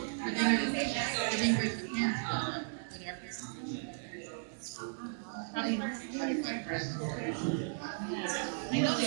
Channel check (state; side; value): silent; left; digital silence